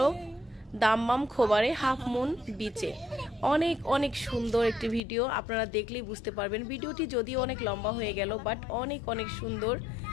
দাম্মাম খোবারে হাফ মুন বিচে। অনেক অনেক সুন্দর একটি ভিডিও, আপনারা দেখলেই বুঝতে পারবেন। ভিডিওটি যদিও অনেক লম্বা হয়ে গেল বাট অনেক অনেক সুন্দর।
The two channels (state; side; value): drops out; right; at 5.0 s